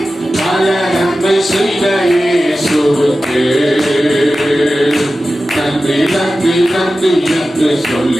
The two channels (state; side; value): normal; both; correlation 0.94